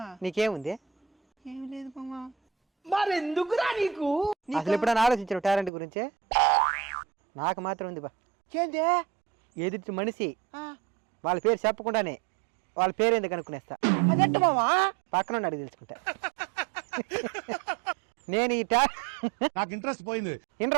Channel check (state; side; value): drops out; left; at 5.7 s